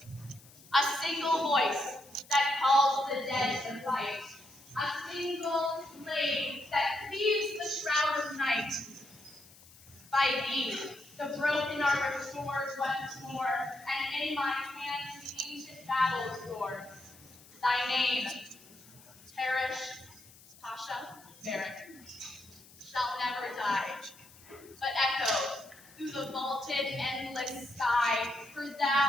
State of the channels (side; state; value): left; noise; hiss, 23 dB below the sound